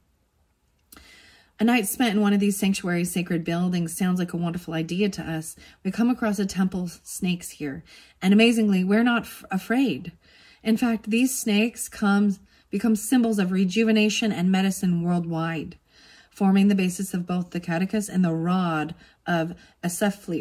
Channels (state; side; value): identical; both; correlation 1.00